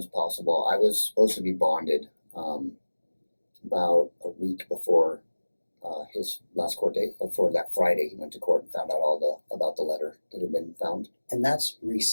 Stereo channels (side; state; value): both; inverted; correlation -1.00